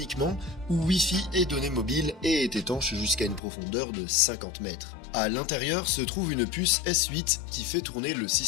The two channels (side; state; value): right; drops out; at 3.4 s